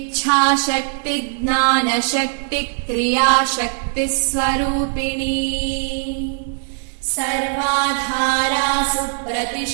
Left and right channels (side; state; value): left; silent; 65 dB below the other